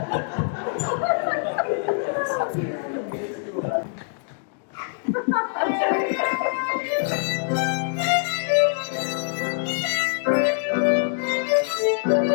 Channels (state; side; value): silent; right; digital silence